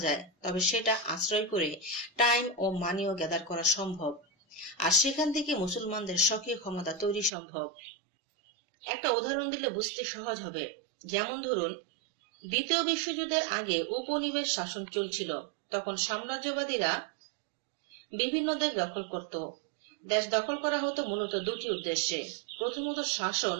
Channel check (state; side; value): drops out; left; at 7.3 s